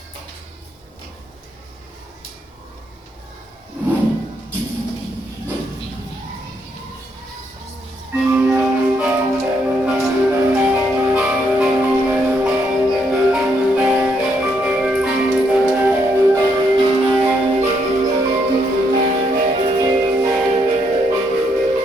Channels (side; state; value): both; normal; correlation 0.75